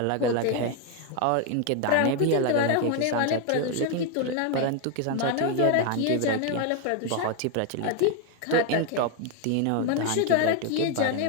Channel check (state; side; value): different; both; correlation 0.01